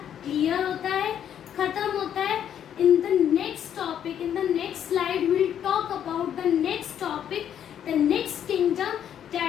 क्लियर होता है, खत्म होता है. इन the next topic, in the next slide will talk about the next topic, the next kingdom,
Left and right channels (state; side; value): quieter; right; 9.5 dB